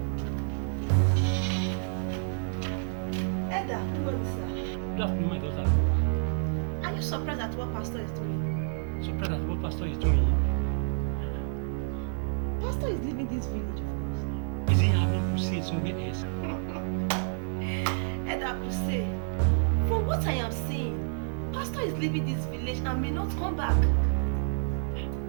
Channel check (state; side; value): silent; left; 58 dB below the other